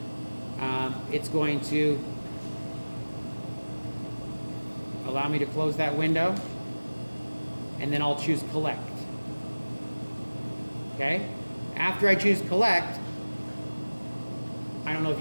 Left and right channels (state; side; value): inverted; both; correlation -1.00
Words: it's going to allow me to close that window. And then I'll choose collect. Okay? After I choose collect, I don't know if